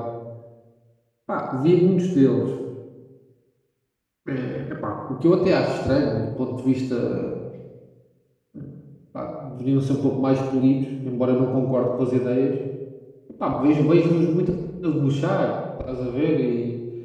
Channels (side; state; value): both; identical; correlation 1.00